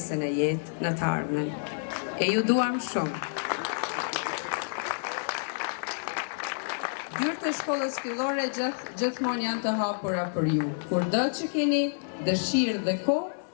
në jetë në të ardhmen. E ju duam shumë. Dyert e shkollës fillore gjithmonë janë të hapura për ju. Kurdo që keni dëshirë dhe kohë,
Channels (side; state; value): right; silent; 59 dB below the other